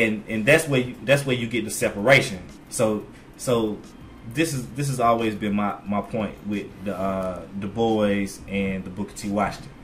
that's where you get the separation. So this has always been my point with the Du Bois and the Booker T. Washington.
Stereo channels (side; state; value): both; identical; correlation 1.00